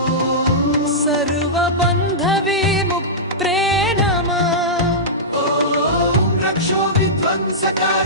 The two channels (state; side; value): normal; both; correlation -0.14